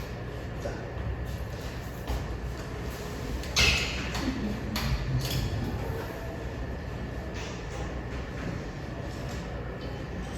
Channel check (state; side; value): identical; both; correlation 1.00